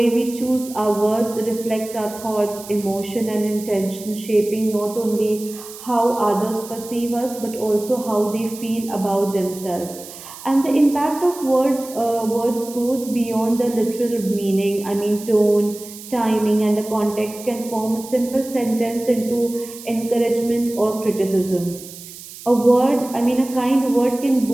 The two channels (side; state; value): right; noise; hiss, 15 dB below the sound